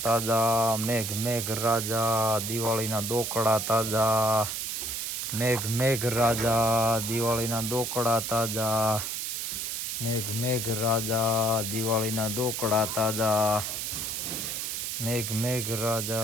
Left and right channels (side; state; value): right; noise; hiss, 3 dB below the sound